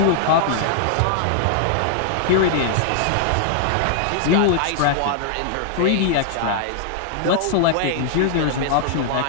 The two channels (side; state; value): both; different; correlation 0.00